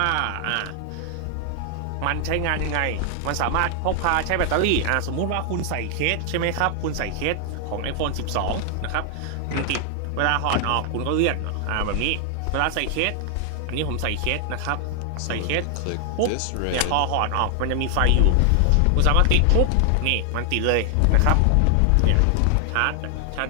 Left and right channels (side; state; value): both; different; correlation 0.00